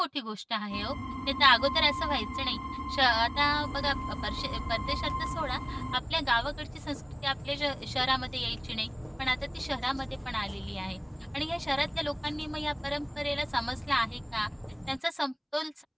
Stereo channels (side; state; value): both; identical; correlation 1.00